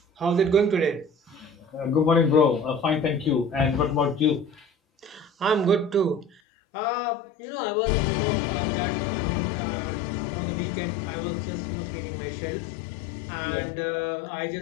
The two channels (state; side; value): drops out; right; at 6.4 s